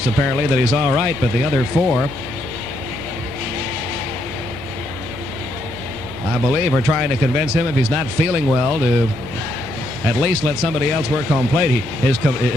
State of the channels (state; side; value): noise; left; hum, 18 dB below the sound